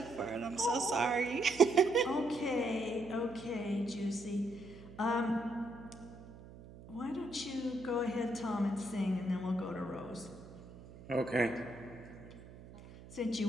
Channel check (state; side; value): noise; right; hum, 17 dB below the sound